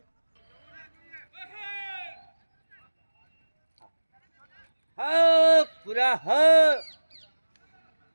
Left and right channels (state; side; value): inverted; both; correlation -1.00